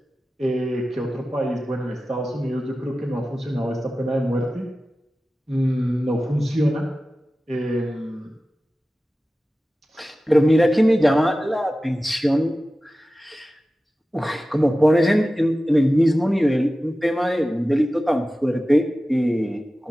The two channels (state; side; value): normal; both; correlation 0.95